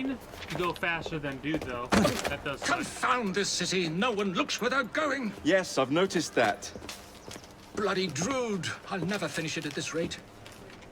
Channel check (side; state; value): both; identical; correlation 1.00